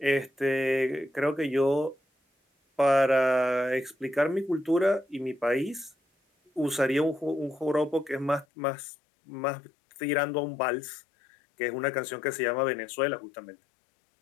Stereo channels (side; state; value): right; drops out; at 8.5 s